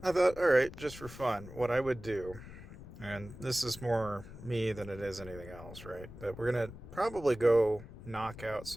I thought, all right, just for fun, what I would do. And this is more me than it is anything else, right? But we're going to probably go knock out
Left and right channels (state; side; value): noise; left; rumble, 15 dB below the sound